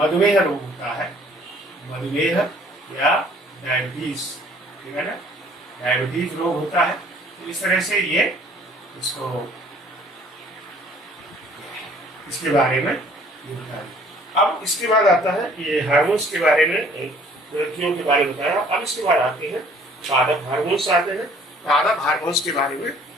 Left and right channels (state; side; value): normal; both; correlation 0.56